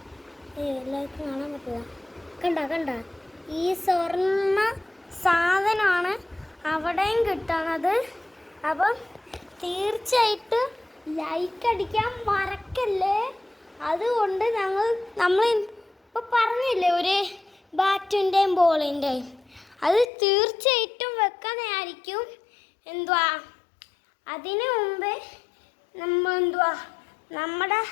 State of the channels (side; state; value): right; drops out; at 20.1 s